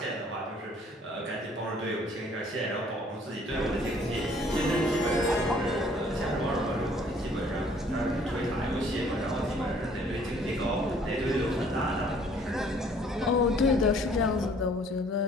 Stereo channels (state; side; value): normal; both; correlation 0.58